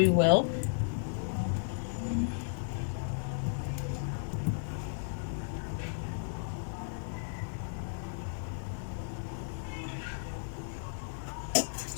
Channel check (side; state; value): right; silent; digital silence